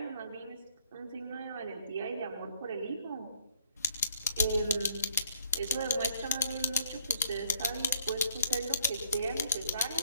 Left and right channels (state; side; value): inverted; both; correlation -0.60